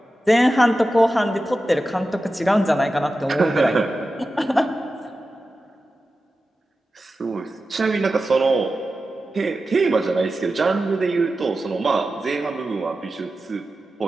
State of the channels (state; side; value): normal; both; correlation 0.93